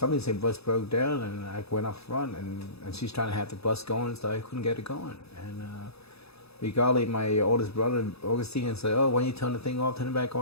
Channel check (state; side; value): late; right; 0.78 ms